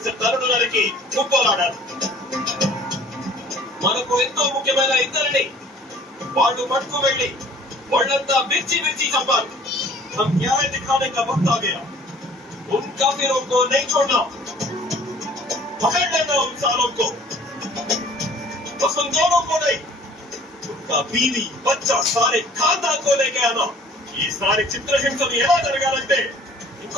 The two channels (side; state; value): both; normal; correlation 0.52